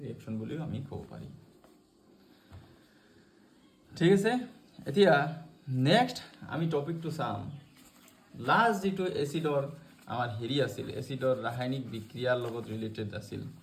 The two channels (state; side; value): identical; both; correlation 1.00